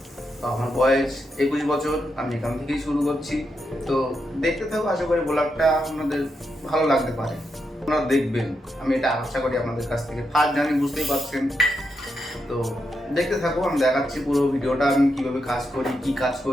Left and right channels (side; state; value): both; normal; correlation 0.83